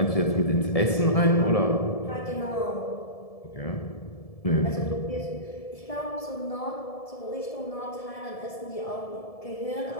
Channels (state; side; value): late; right; 1.7 ms